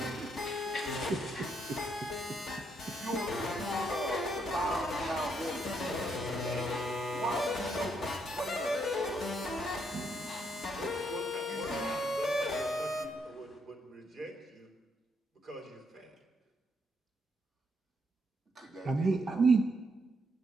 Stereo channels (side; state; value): both; normal; correlation 0.75